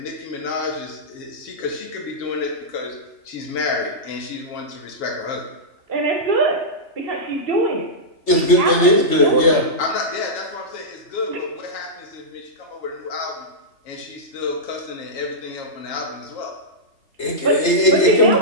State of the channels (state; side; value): late; right; 3.3 ms